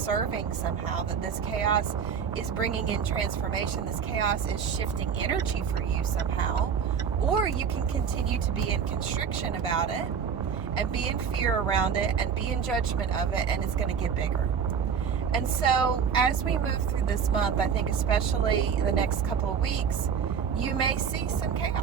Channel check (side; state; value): left; quieter; 7.0 dB